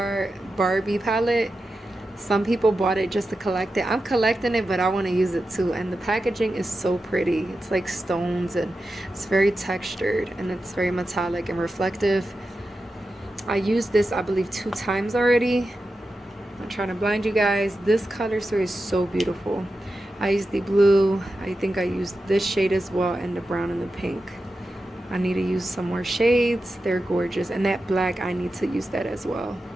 Barbie palette. Some people bought it just to collect it. I'm collecting it, but I want to use it too. And the packaging is so pretty. It's like stones, and it's very textured, and it's very metallic and reflective. I used this, I believe, 2 times already. I'm trying to blind you guys. This color story is so beautiful. I used the blue. I think I used this shade as well, and the brown and the pink. I need to use some more shades. They're gorgeous. And that black, I need to use that as well.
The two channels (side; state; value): both; normal; correlation 0.91